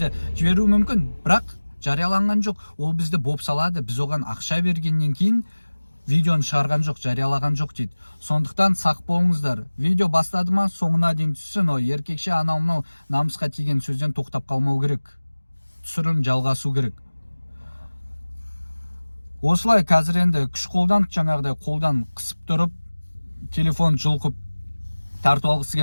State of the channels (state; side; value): inverted; both; correlation -1.00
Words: жіберу мүмкін, бірақ жарияланған жоқ. Ол бізді боп салады, біз оған ақша бергеннен кейін видеоны шығарған жоқ, жариялаған жоқ дейді. Сондықтан сақ болыңыздар. Видео бастады ма, соңына дейін түссін. О, еркекше анау мынау намысқа тиген сөзден тоқтап қалмау керек. Түсірілім жалғасу керек. Осылай қазір енді күш қолдан, жаңағыдай қолдан қысып тұрып, телефон жұлқып тартып алғысы